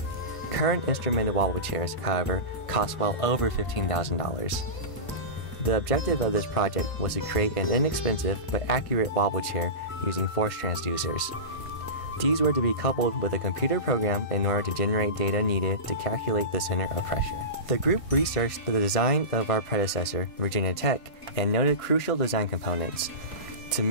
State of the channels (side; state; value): right; late; 1.5 ms